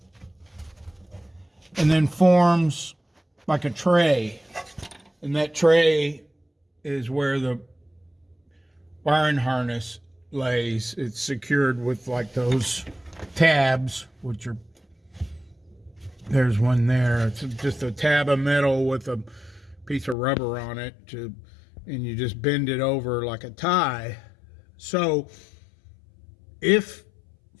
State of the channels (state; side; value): drops out; right; at 20.2 s